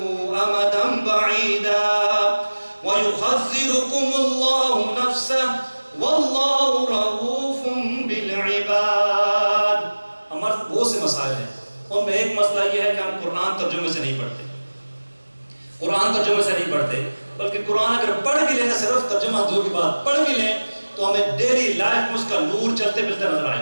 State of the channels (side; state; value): both; inverted; correlation -1.00